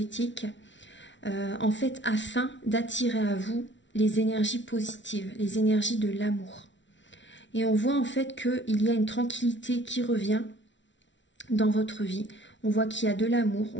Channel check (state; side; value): late; right; 0.54 ms